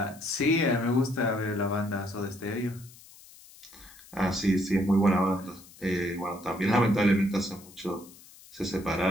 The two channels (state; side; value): noise; left; hiss, 22 dB below the sound